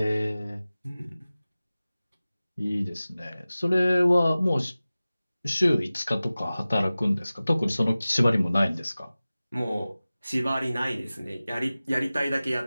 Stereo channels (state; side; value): inverted; both; correlation -0.97